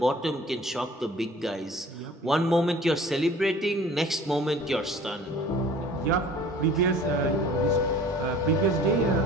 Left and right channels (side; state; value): both; normal; correlation 0.47